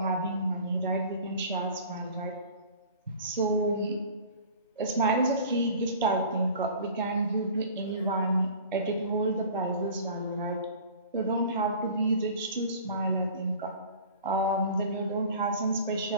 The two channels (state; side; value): inverted; both; correlation -0.43